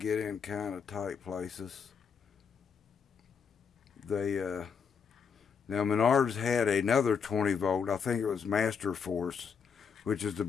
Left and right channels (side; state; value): right; quieter; 6.5 dB